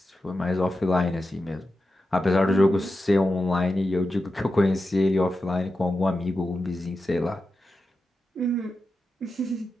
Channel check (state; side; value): normal; both; correlation 0.91